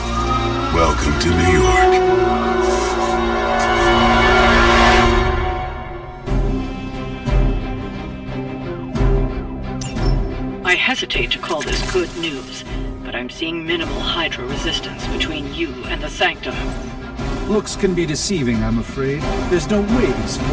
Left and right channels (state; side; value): identical; both; correlation 1.00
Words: Welcome to New York. I hesitate to call this good news, but I'm seeing minimal Hydra resistance between you and the Sanctum. Looks can be deceiving, I'm afraid. There's no way these